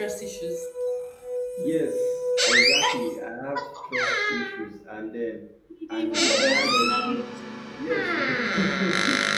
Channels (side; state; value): both; identical; correlation 1.00